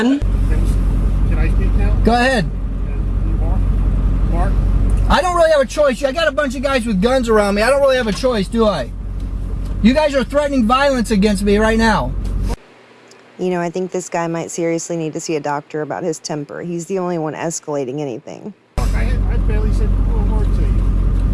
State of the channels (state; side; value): identical; both; correlation 1.00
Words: Can I speak now? Go ahead. Mark? I don't really have a choice. I got a bunch of guys with guns around me. I don't really have a choice, do I? You guys are threatening violence against me right now. You know, I think this guy might seriously need to see a doctor about his temper. He's the only one escalating anything. I barely said a word to